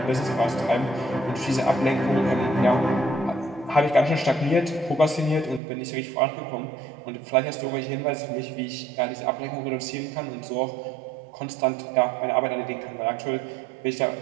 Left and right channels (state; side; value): drops out; left; at 5.6 s